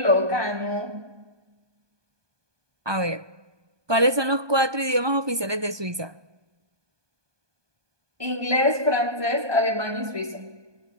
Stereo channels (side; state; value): left; late; 1.2 ms